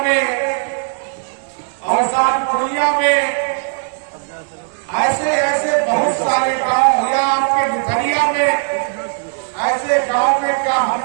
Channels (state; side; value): silent; left; 68 dB below the other